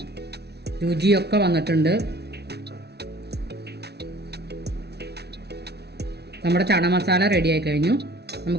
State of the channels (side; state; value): left; late; 0.49 ms